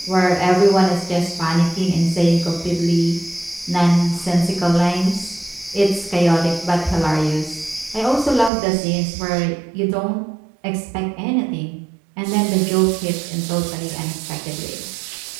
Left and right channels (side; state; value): left; drops out; at 8.5 s